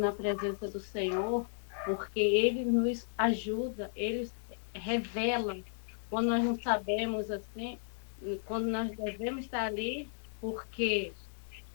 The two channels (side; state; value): right; silent; 55 dB below the other